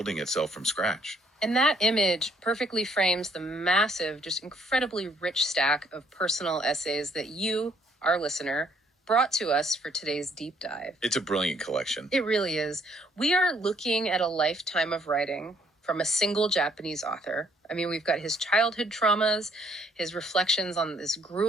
itself from scratch. And that image perfectly frames the massive, just incredibly rich stack of personal essays that you, our listener, brought to us for today's deep dive. It's a brilliant collection. It really is. We are looking at a lifetime of writing from a single Japanese author. I mean, we've got his childhood traumas, his reflections on this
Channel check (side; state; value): both; normal; correlation 0.66